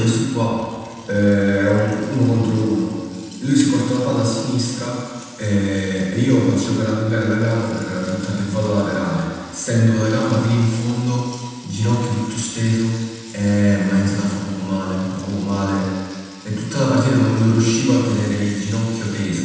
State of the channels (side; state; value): both; identical; correlation 1.00